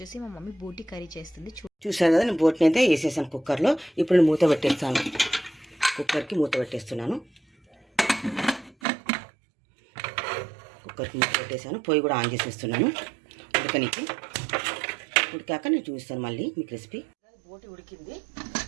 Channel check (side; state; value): left; drops out; at 8.8 s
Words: మా mummy బోటి కర్రీ చేస్తుంది. చూసాను కదా, నేను బోటిని అయితే వేసేసాను కుక్కర్లో. ఇప్పుడు నేను మూత పెట్టేస్తాను. కుక్కర్కి మూత పెట్టేస్తున్నాను. కుక్కర్కి మూత పెట్టేసాను. పొయ్యి కూడా ఆన్ చేసేస్తున్నాను ఉడకనికి. ఉడికాక నేను చూపిస్తాను మళ్ళీ మీకు రెసిపీ. బోటి ఉడికింది,